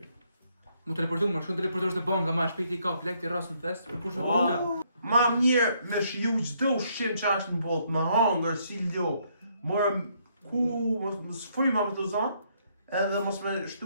Mu teleportu, më shkon teleportosh në banka, ma shpejt i ka plek të rras në fest, për kush në Oh. banka. Ma mirë me shiju çdo ushqim që është në botë, me hangër, si lo, morëm ku, mos fryma me të zonë, edhe mos me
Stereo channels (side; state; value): both; inverted; correlation -0.71